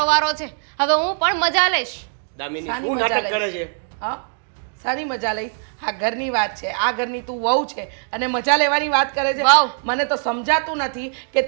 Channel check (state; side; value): silent; left; 65 dB below the other